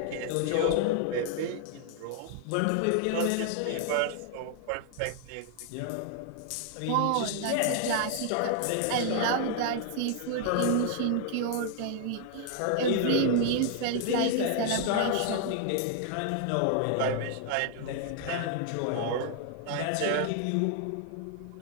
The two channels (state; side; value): different; both; correlation 0.00